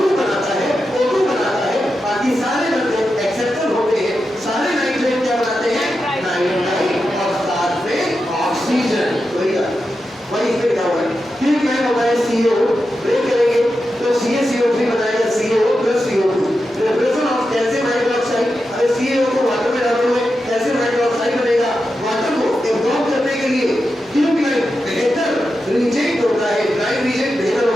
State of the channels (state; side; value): normal; both; correlation 0.89